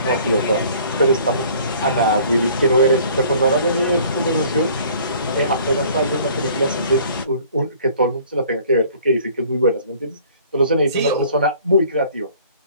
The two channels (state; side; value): inverted; both; correlation -0.53